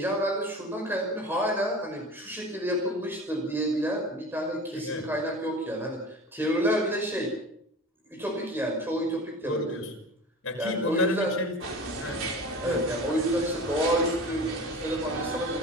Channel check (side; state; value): both; normal; correlation 0.36